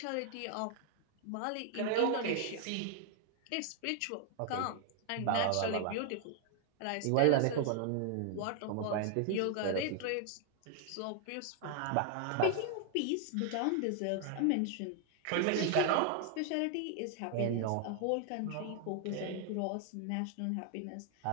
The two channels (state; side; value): different; both; correlation 0.00